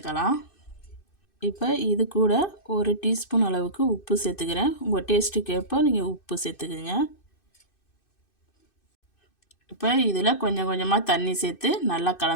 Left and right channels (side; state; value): right; late; 2.6 ms